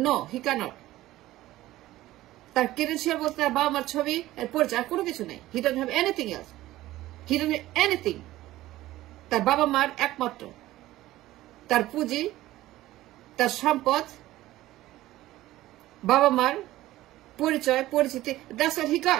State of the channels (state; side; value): quieter; left; 16.0 dB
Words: নো, হি ক্যানট। তার ক্রেডেন্সিয়াল বলতে তার বাবা মার ছবি, এর পরিচয়, কোনো কিছু নেই। হি don't have anything else, he don't have anything. তার বাবা মার একমাত্র, তার পুঁজি, তার সম্পদ, বাবা মার পরিচয়, পরিচিতি, that's what he